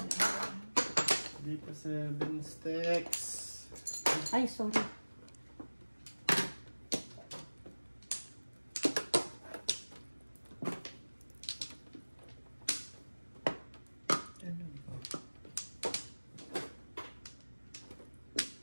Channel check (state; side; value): inverted; both; correlation -1.00